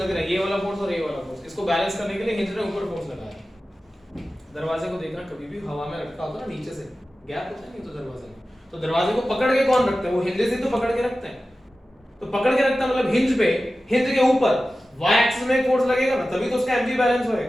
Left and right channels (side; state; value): both; normal; correlation 0.95